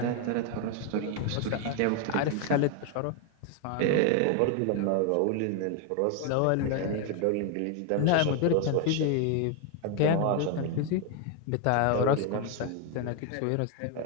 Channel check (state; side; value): different; both; correlation 0.01